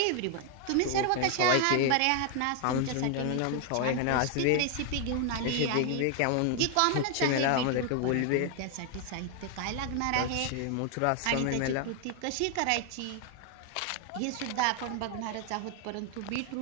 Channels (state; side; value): different; both; correlation 0.00